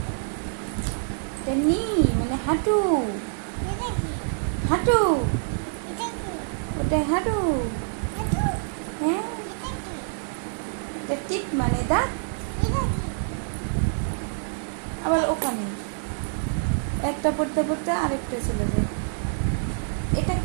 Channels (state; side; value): silent; left; digital silence